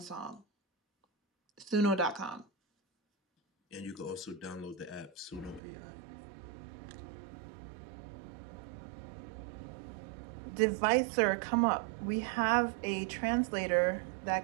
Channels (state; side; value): drops out; left; at 5.6 s